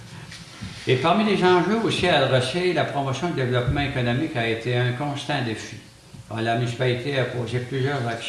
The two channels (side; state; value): both; identical; correlation 1.00